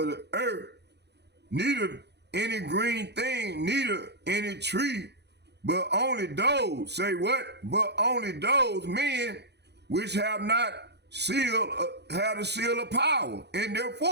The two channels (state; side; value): late; left; 0.49 ms